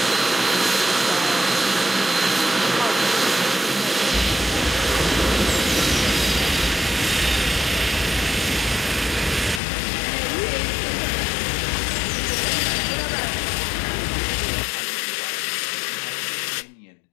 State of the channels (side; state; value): right; drops out; at 9.6 s